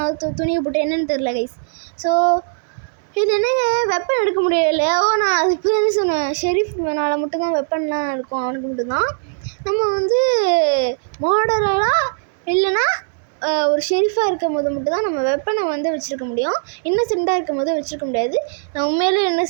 துணியை போட்டு, என்னன்னு தெரில கைஸ். ஸோ இது என்னங்க, வெப்பன் எடுக்க முடியல. நான் அது இப்போ தானே சொன்னேன், ஷெரீஃப் மேனால் மட்டும்தான் வெப்பன்லாம் இருக்கும், அவனுக்கு மட்டும்தான். நம்ம வந்து மர்டரராக இல்லைன்னா ஒரு ஷெரீஃபாக இருக்கும் போது மட்டும்தான் நம்ம வெப்பனை வந்து வச்சுருக்க முடியும். இன்னசென்ட்டாக இருக்கும் போது வச்சுருக்க முடியாது. நான் உண்மையிலே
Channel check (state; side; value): silent; left; digital silence